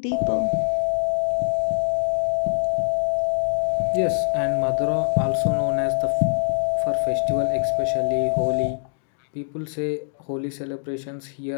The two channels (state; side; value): silent; right; digital silence